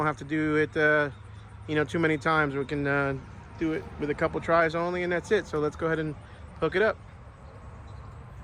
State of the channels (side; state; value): both; identical; correlation 1.00